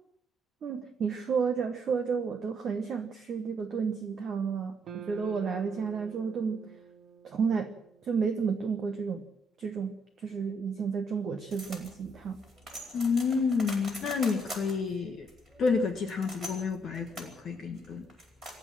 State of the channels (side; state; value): both; normal; correlation 0.72